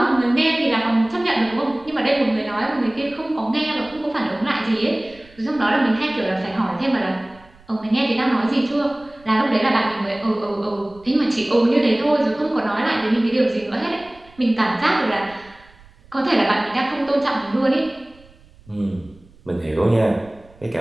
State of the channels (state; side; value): noise; right; rumble, 26 dB below the sound